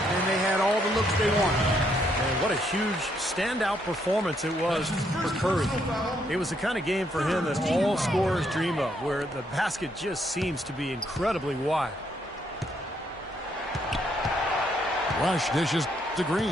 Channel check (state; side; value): normal; both; correlation 0.73